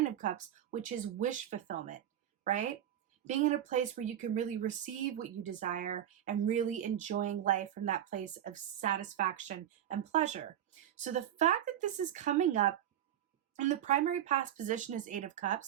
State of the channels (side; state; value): left; quieter; 10.9 dB